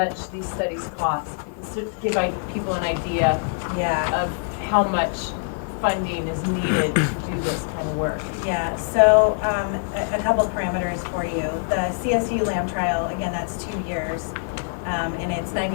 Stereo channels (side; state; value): right; silent; digital silence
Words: these studies cost, because to give people an idea Yeah. of how much funding is needed to do this kind of work. Yeah, so a couple parameters for you. The CSU LAM trial, again, that's 2 years, and it's